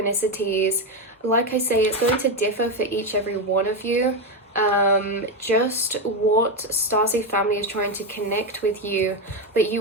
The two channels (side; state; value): both; normal; correlation 0.10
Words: Like I say, it's going to differ for every one of you. Just what Starseed family is trying to connect with you, but